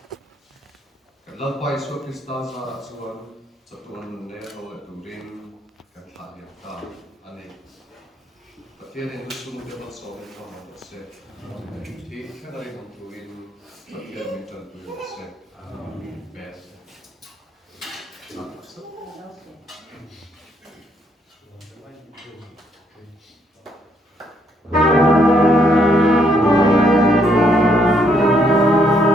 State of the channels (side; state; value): both; normal; correlation 0.72